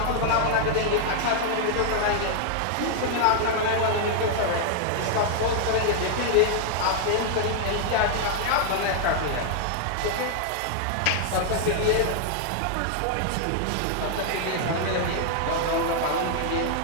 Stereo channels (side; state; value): both; different; correlation 0.00